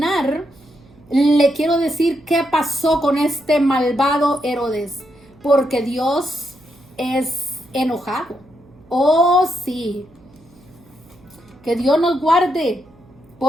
le quiero decir qué pasó con este malvado Herodes, porque Dios es enojado. Oh, sí. Que Dios nos guarde,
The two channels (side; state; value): right; noise; hum, 28 dB below the sound